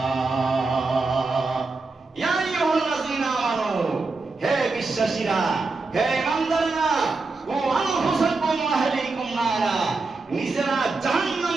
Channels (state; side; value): quieter; left; 3.8 dB